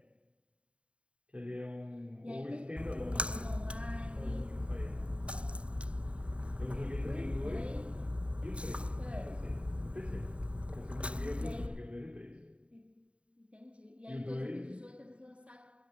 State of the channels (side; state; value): left; late; 0.060 ms